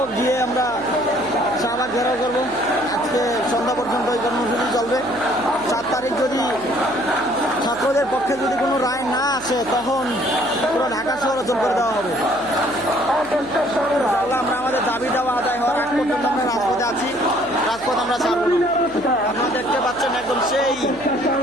গিয়ে আমরা শাহবাগ ঘেরাও করবো। আজকে সন্ধ্যা পর্যন্ত এই কর্মসূচি চলবে। 7 তারিখ যদি ছাত্রদের পক্ষে যদি কোনো রায় না আসে, তখন পুরো ঢাকা শহর অচল করে দেওয়া হবে। আমরা আমাদের দাবি দেওয়া আদায় হওয়ার আগ পর্যন্ত আমরা রাজপথে আছি, রাজপথ আমরা ছাড়ব না। আপনারা দেখতে পাচ্ছেন একদম সেই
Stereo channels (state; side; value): noise; left; hum, 21 dB below the sound